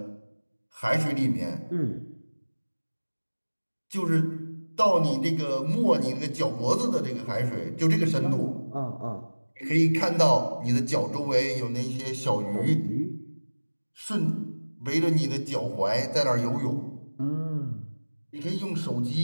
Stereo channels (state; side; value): inverted; both; correlation -1.00